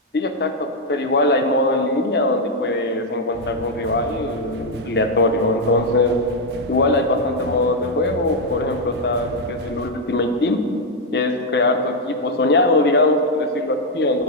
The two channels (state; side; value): normal; both; correlation 0.00